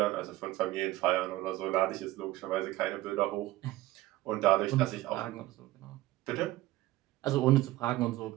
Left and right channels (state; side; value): quieter; left; 16.7 dB